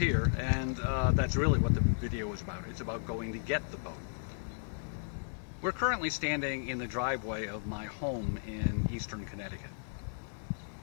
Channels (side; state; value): right; silent; digital silence